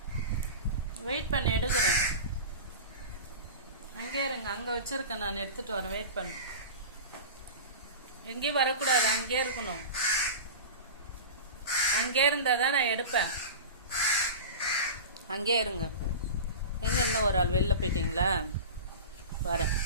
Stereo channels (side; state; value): both; inverted; correlation -0.30